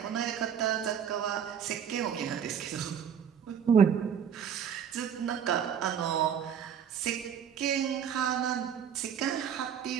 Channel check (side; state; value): left; quieter; 8.1 dB